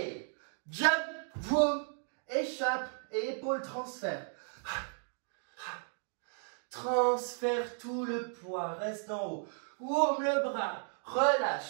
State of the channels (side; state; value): left; silent; 55 dB below the other